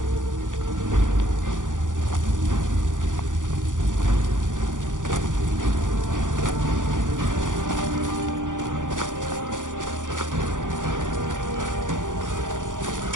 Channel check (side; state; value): left; late; 0.87 ms